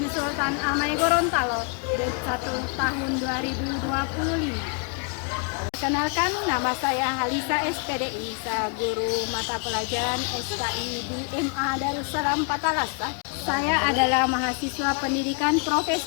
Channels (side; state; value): right; quieter; 35.0 dB